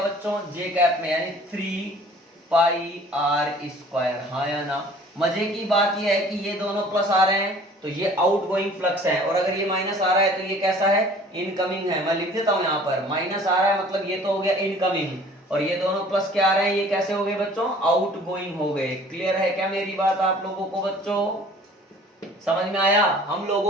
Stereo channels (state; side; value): normal; both; correlation 0.50